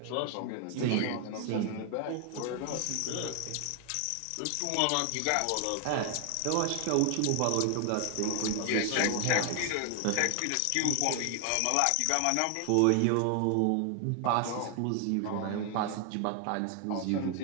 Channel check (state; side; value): different; both; correlation 0.00